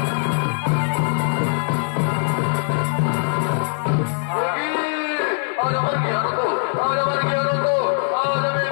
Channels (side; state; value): right; silent; digital silence